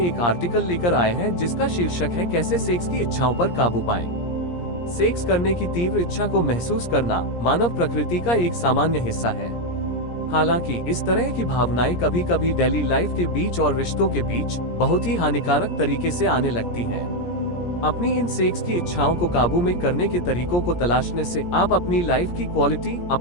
आर्टिकल लेकर आए हैं जिसका शीर्षक है कैसे सेक्स की इच्छाओं पर काबू पाएं। सेक्स करने की तीव्र इच्छा को महसूस करना मानव प्रकृति का एक सामान्य हिस्सा है। हालांकि इस तरह की भावनाएं कभी कभी डेली लाइफ के बीच और रिश्तों के बीच बहुत ही हानिकारक तरीके से आने लगती हैं। अपनी इन सेक्स की इच्छाओं को काबू में करने के तरीकों को तलाशने से आप अपनी लाइफ की क्वालिटी,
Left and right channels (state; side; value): late; right; 17 ms